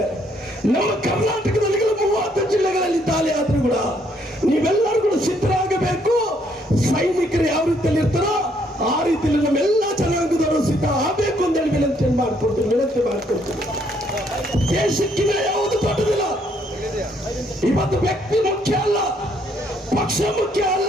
ನಮ್ಮ ಕರ್ನಾಟಕದಲ್ಲಿ 30 ಜಿಲ್ಲೆಗಳಲ್ಲಿ ದಾಳಿ ಆದ್ರೂ ಕೂಡ ನೀವೆಲ್ಲರೂ ಕೂಡ ಸಿದ್ಧರಾಗಬೇಕು. ಹಾಕೊಂಡು ವಿನಂತಿ ಮಾಡ್ಕೊಳ್ತೀನಿ. ದೇಶಕ್ಕಿಂತ ಯಾವುದು ದೊಡ್ಡದಿಲ್ಲ. ಇವತ್ತು ವ್ಯಕ್ತಿ ಮುಖ್ಯ ಅಲ್ಲ, ಪಕ್ಷ ಮುಖ್ಯ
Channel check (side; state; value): both; normal; correlation 0.69